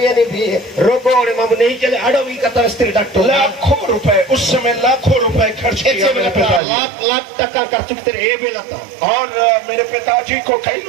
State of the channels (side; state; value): left; drops out; at 6.6 s